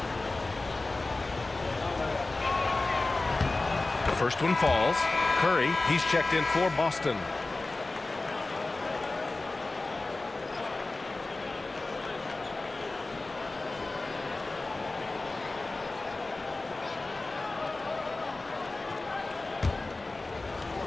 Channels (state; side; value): quieter; right; 3.2 dB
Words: The first one falls. Curry, he's checked in for Boston.